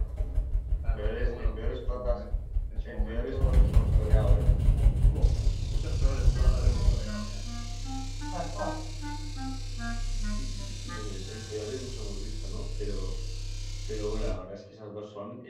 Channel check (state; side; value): identical; both; correlation 1.00